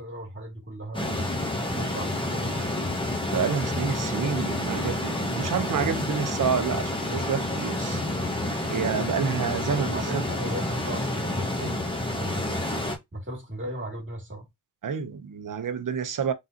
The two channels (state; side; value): normal; both; correlation 0.30